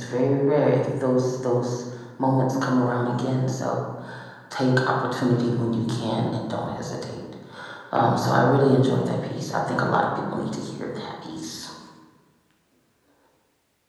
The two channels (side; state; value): both; identical; correlation 1.00